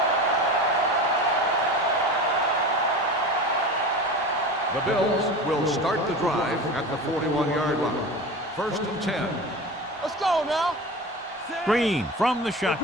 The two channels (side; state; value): both; normal; correlation 0.31